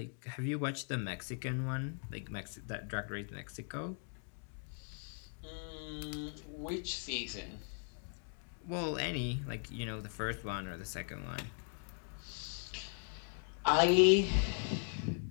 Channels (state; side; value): silent; right; 52 dB below the other